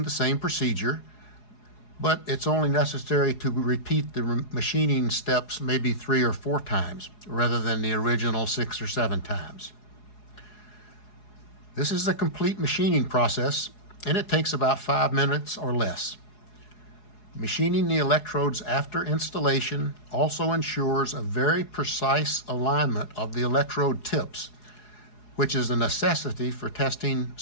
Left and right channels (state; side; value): late; right; 4.8 ms